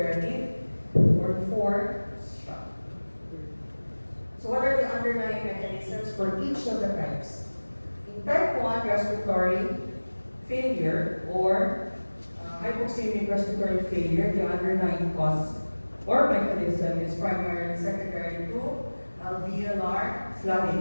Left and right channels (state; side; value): inverted; both; correlation -1.00